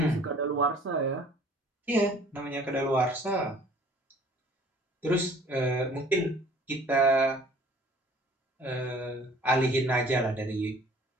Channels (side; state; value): both; normal; correlation 0.53